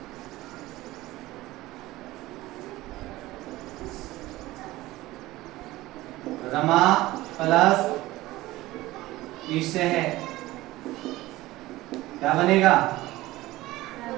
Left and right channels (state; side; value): quieter; left; 17.8 dB